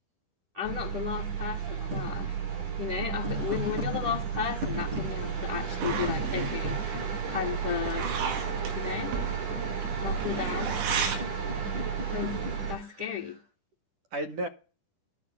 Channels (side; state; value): left; late; 10 ms